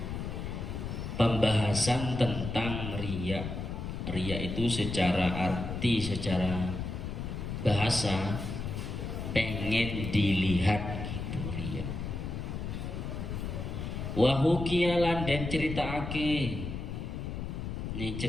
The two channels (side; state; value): left; noise; rumble, 5 dB below the sound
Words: Pembahasan tentang riya. Riya itu secara arti, secara bahasa pengen dilihat gitu riya. Wa hukiya lan den critakake. Ini